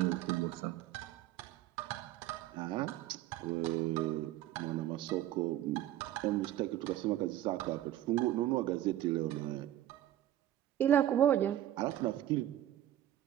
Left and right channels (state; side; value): quieter; left; 12.9 dB